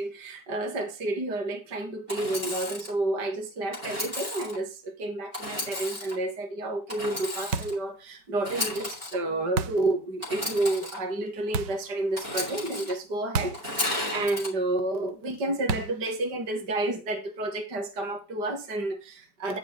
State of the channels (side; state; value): left; late; 4.5 ms